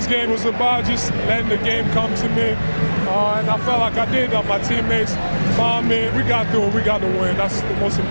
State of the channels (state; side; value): inverted; both; correlation -1.00